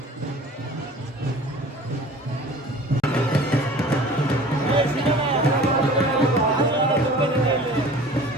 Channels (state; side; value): normal; both; correlation 0.44